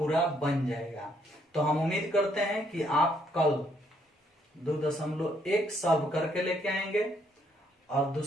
बन जाएगा। तो हम उम्मीद करते हैं कि आप कल 2.1 सॉल्व करके लेके आएंगे और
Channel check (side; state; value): both; normal; correlation 0.71